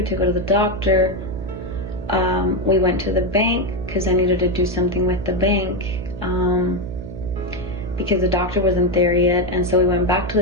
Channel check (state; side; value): noise; right; hum, 10 dB below the sound